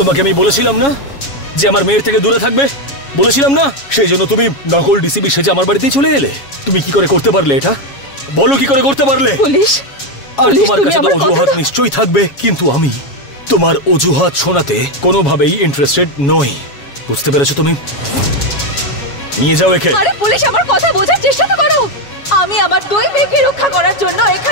আমি বলেছিলাম না যে আমার মেয়ের থেকে দূরে থাকবে, বলেছিলাম না? সেই জন্য তুমি নকল ডিসিবি সেজে আমার বাড়িতেই চলে এলে। তুমি কি করে করতে পারলে এটা? বলো কি করে করতে পারলে? পুলিশ, আর পুলিশ, তোমার তুমি কাছে তো আমার অজুহাত কথাটা- নিশ্চয়ই থাকবে, কিন্তু আমি তোমার অজুহাত শোনাতে কোনোভাবেই ইন্টারেস্টেড নই। বুঝতে পেরেছো তুমি? নিয়ে যাও একে। আরে পুলিশ, আমার কথা বোঝার চেষ্টা তো করো। আমি আমার দুই মেয়েকে রক্ষা করার জন্য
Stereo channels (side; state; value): right; late; 7.2 ms